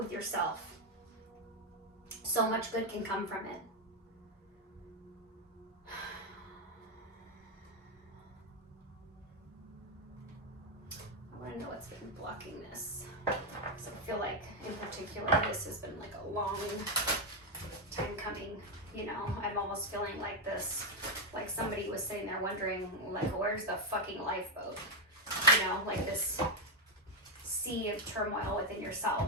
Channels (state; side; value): normal; both; correlation 0.05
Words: yourself. So much good can come from it. I want to know what's been blocking this, because I feel like in particular this has been like a long time coming. I'm almost feeling like this, like somebody was sitting there wondering, like, where's the fucking lifeboat? Like this sea of turmoil within